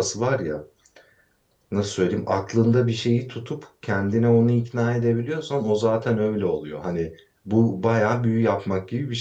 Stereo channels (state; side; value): identical; both; correlation 1.00